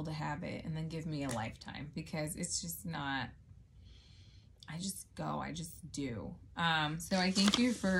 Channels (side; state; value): both; identical; correlation 1.00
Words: a habit and then give me a lifetime, because it's just not, I just do. So I thank you